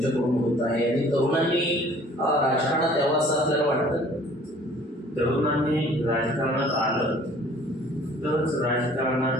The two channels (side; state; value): both; normal; correlation 0.53